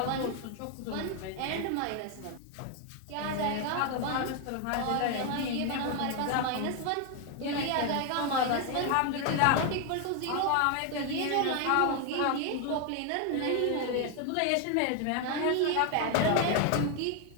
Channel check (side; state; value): both; different; correlation 0.01